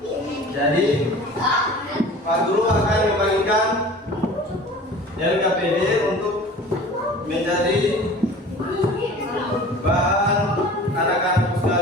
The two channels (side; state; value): both; normal; correlation 0.42